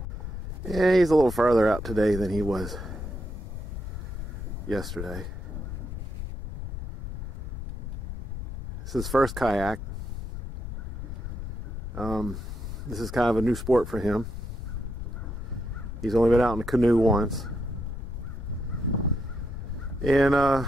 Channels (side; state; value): left; noise; rumble, 7 dB below the sound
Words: Yeah, he's a little farther out today than he was yesterday. This is his first kayak. This is kind of a new sport for him. He's only been out in a canoe once. And